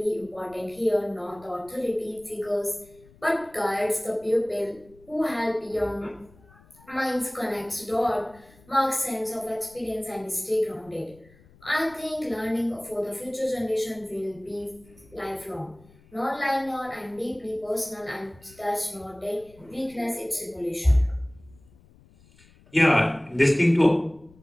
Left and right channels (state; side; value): noise; left; rumble, 26 dB below the sound